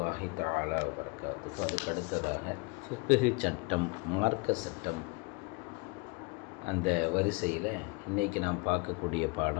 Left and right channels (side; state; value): right; quieter; 28.6 dB